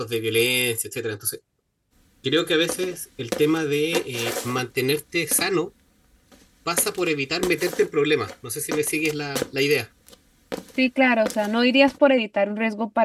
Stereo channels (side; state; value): both; identical; correlation 1.00